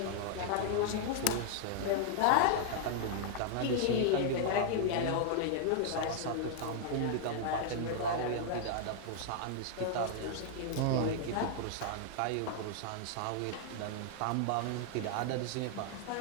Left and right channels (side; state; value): both; different; correlation 0.00